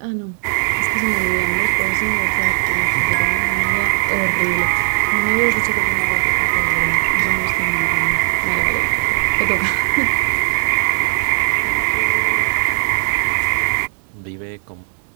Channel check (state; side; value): silent; left; digital silence